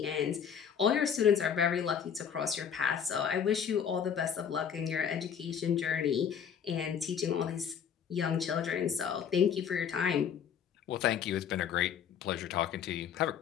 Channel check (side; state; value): right; quieter; 7.9 dB